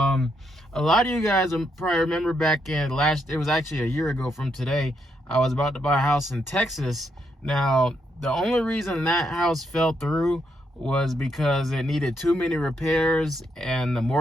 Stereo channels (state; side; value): normal; both; correlation 0.78